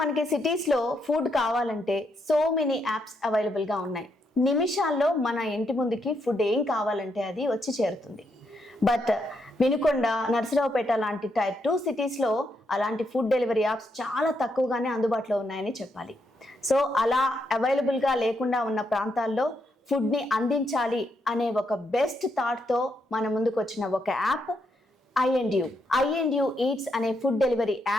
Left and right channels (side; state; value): both; normal; correlation 0.79